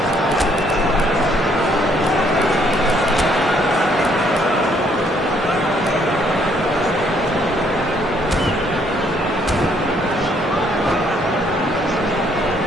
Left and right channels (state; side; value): normal; both; correlation 0.67